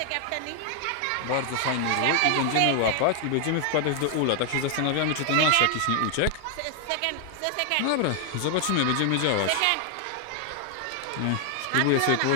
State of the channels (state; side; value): different; both; correlation 0.00